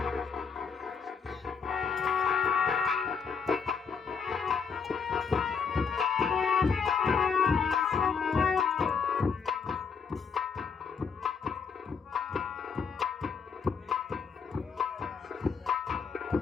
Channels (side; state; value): right; quieter; 6.0 dB